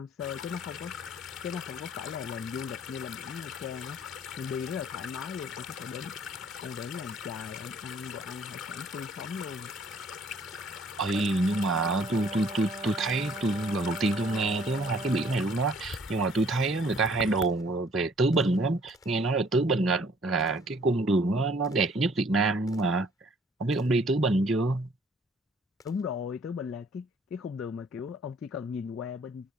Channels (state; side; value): normal; both; correlation 0.59